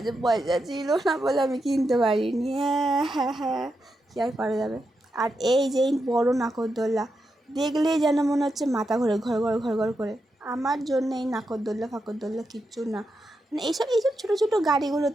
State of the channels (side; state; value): both; normal; correlation 0.86